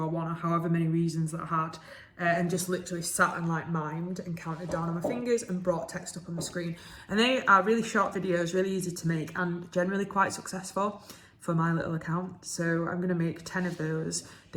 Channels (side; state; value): both; identical; correlation 1.00